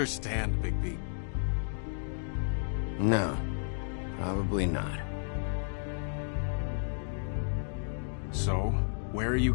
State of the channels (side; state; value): right; silent; digital silence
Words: Bigby. No, probably not. So, where are you